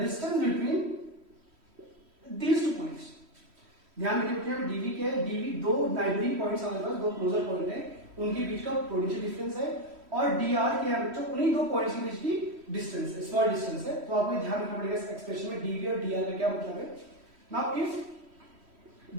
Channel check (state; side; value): late; left; 3.1 ms